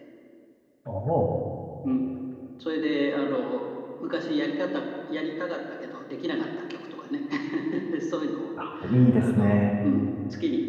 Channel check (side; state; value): both; identical; correlation 1.00